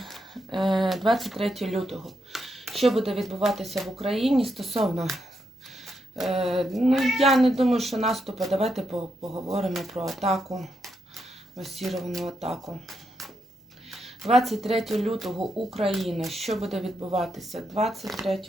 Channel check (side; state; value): both; normal; correlation 0.82